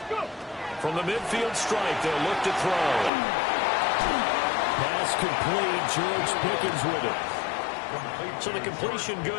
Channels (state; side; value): drops out; right; at 3.1 s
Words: go. From the midfield stripe, they'll look to throw. Pass complete. George Pickens with it. So the completion